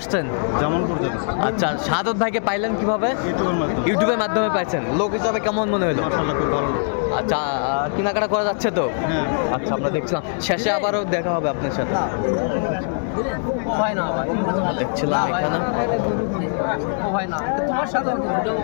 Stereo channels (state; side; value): silent; right; 64 dB below the other